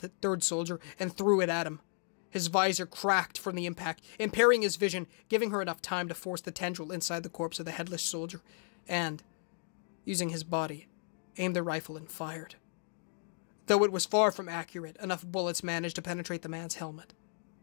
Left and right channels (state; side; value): silent; right; 55 dB below the other